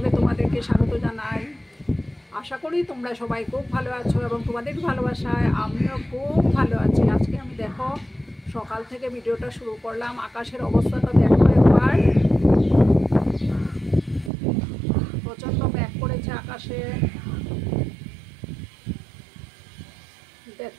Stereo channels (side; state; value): left; drops out; at 14.3 s